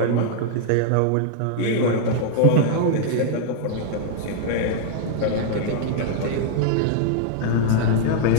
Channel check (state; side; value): different; both; correlation -0.01